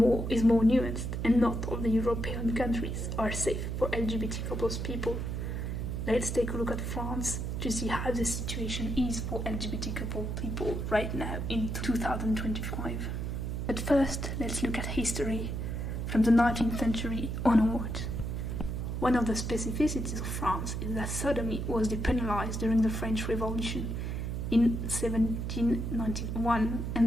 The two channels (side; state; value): right; noise; hum, 3 dB below the sound